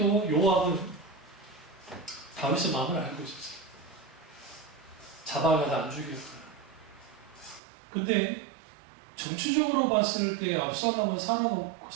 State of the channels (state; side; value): drops out; left; at 7.6 s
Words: 요압은 다윗의 마음을 알고 있었어요. 잡아가서 안 죽였어요. 근데 정치적으로 봤을 때 압살롬은